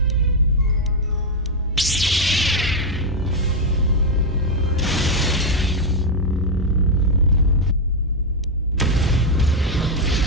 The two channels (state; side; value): normal; both; correlation 0.03